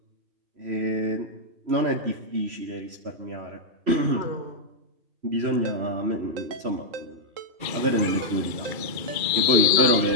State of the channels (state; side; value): late; left; 2.4 ms